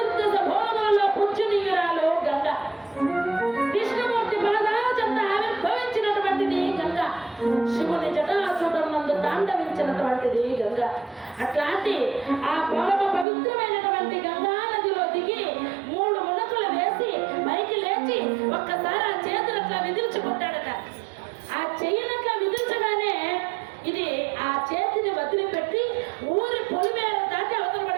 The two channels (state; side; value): drops out; left; at 13.2 s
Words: భోగంలో పుచ్చునీయురాలు గంగ. కృష్ణమూర్తి పాదాల చెంత ఆవిర్భవించినటువంటిది గంగ. శివుని జటాసుటం నందు తాండవించినటువంటిది గంగ. అట్లాంటి ఆ పరమ పవిత్రమైనటువంటి గంగా నదిలో దిగి 3 మునకలు వేసి పైకి లేచి ఒక్కసారి ఆ చేతులు అట్లా విదిల్చుకుంటాడట. ఆ చెయ్యినట్లా విదిల్చగానే ఇది ఆ చేతిని వదిలిపెట్టి ఊరి పొలిమేర దాటి అవతల